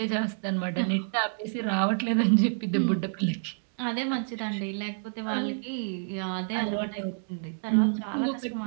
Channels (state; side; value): silent; left; digital silence